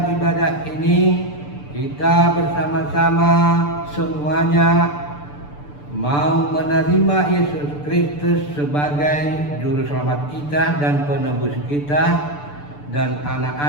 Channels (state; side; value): late; right; 6.8 ms